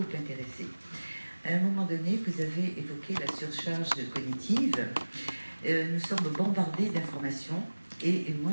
intéressé. À un moment donné, vous avez évoqué la surcharge cognitive. Nous sommes bombardés d'informations et moi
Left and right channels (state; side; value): inverted; both; correlation -1.00